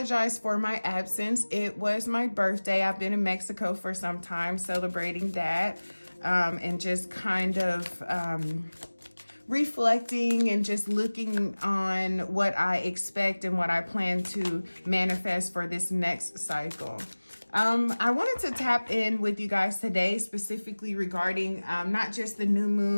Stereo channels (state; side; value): inverted; both; correlation -1.00